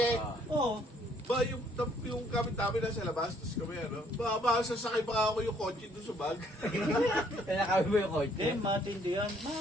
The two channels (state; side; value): normal; both; correlation 0.65